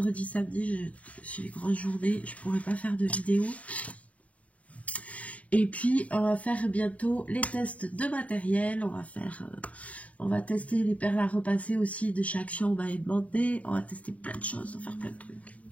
samedi, j'ai les grosses journées. Je ne pourrai pas faire de vidéo. Et puis, on va faire bientôt les tests de matériel. On va tester les perles à repasser aussi de chaque action. On va demander. On va tester plein de choses. On va faire plein de trucs.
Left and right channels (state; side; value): late; right; 0.068 ms